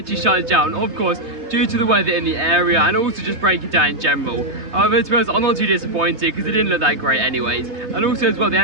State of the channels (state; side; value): late; left; 3.2 ms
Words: shut down, of course due to the weather in the area and also just breaking down in general. However, to be honest, I'm not too disappointed because it didn't look that great anyways, and also as well they